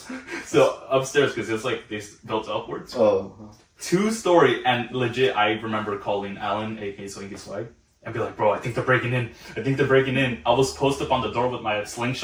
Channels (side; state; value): both; identical; correlation 1.00